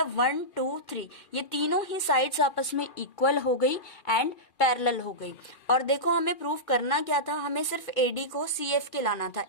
1 2 3 ये तीनों ही साइड्स आपस में इक्वल हो गई एंड पैरेलल हो गई. और देखो हमें प्रूफ करना क्या था, हमें सिर्फ AD को CF के लाना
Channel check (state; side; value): late; right; 2.4 ms